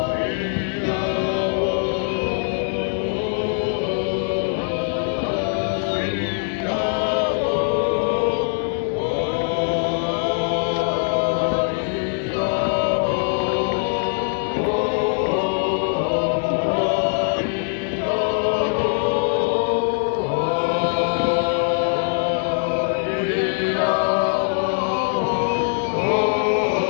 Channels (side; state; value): right; silent; 64 dB below the other